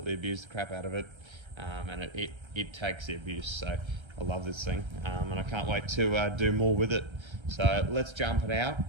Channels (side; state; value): left; late; 1.3 ms